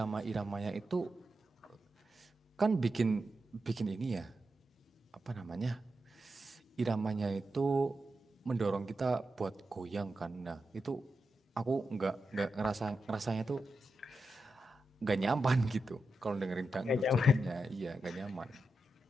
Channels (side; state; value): both; normal; correlation 0.88